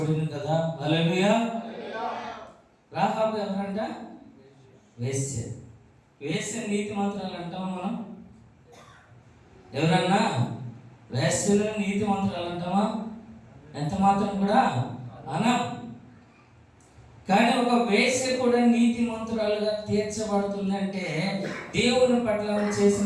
కదా. హల్లెలూయా. రాహాబు ఎవరంట? వేశ్య. వేశ్య నీతిమంతురాలు అంటాం మనం? ఎవరన్నా వేశ్యలు నీతిమంతురాలు అంటామా? ఎంత మాత్రం కూడా అనం. కానీ ఒక వేశ్య కూడా నీతిమంతురాలుగా తీర్చబడుతుందంటే దేవుని పట్ల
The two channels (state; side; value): identical; both; correlation 1.00